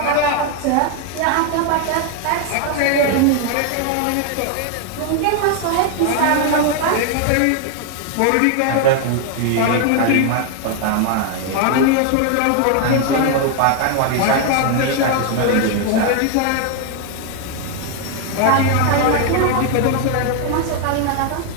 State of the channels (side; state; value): both; different; correlation 0.01